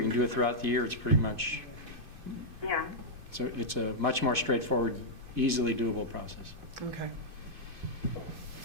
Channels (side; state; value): left; late; 2.4 ms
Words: can do it throughout the year. It's pretty much, Yeah. so it's a much more straightforward, easily doable process. Okay.